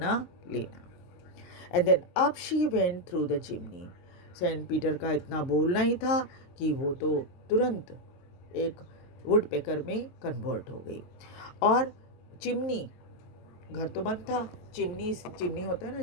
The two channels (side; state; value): right; late; 23 ms